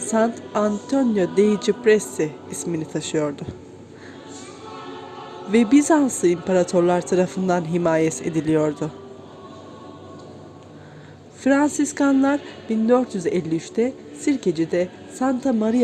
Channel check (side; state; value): both; identical; correlation 1.00